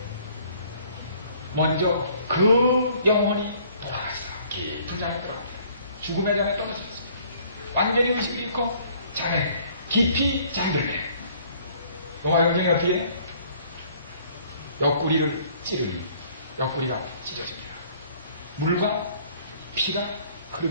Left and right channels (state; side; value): inverted; both; correlation -0.58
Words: 먼저 그 영혼이 돌아갔어. 깊은 잠에 들어갔어. 죽음의 잠에 떨어졌어. 완전히 의식을 잃고 잠에 깊이 잠들네. 로마 영경이 어떻게 해? 옆구리를 찌르니 옆구리가 찢어집니다. 물과 피가